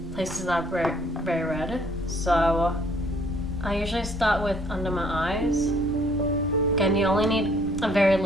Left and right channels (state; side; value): noise; right; rumble, 14 dB below the sound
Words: places that are very, very red. So I usually start with under my eyes. Again, you only need a very